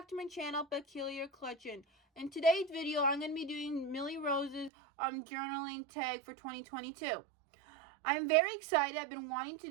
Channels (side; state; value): left; drops out; at 4.7 s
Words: to my channel, Peculiar Collection. In today's video, I'm going to be doing Millie Rose's journaling tag for 2022. I'm very excited. I've been wanting to